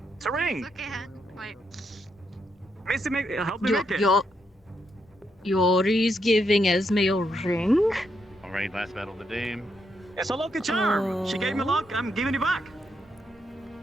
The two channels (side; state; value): both; normal; correlation 0.80